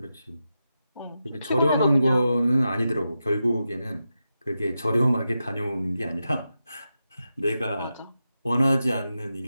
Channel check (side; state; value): both; inverted; correlation -0.89